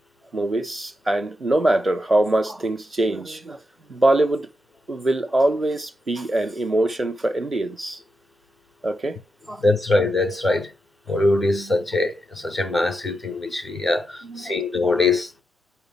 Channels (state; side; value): normal; both; correlation 0.85